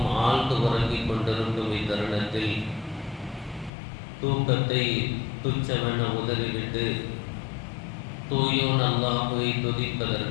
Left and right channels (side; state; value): right; drops out; at 3.7 s